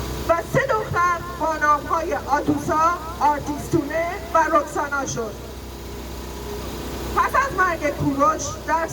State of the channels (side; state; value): both; identical; correlation 1.00